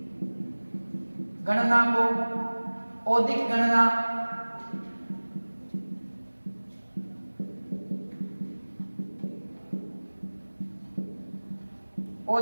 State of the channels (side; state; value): both; inverted; correlation -1.00